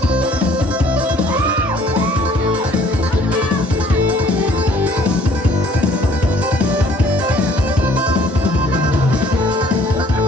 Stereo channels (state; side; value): normal; both; correlation 0.58